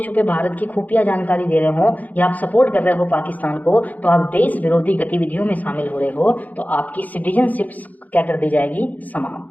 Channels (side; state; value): right; late; 0.079 ms